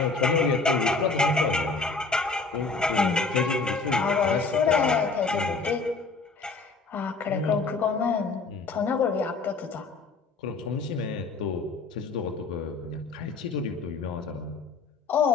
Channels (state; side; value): quieter; right; 4.1 dB